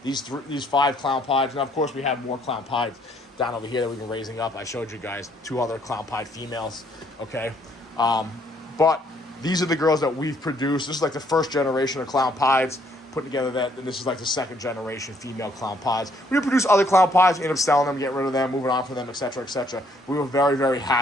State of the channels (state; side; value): normal; both; correlation 0.67